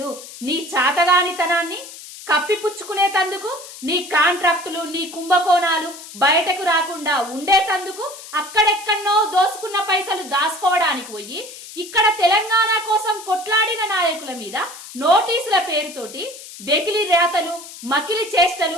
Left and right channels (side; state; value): left; noise; hiss, 15 dB below the sound